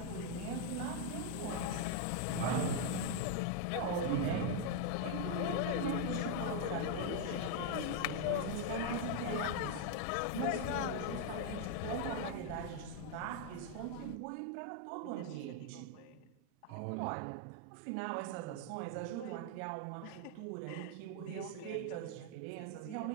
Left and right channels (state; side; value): different; both; correlation 0.00